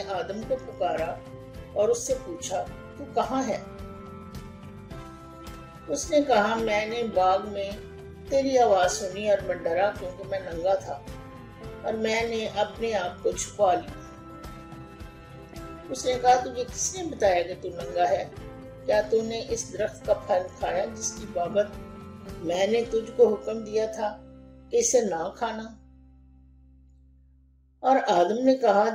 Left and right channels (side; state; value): both; identical; correlation 1.00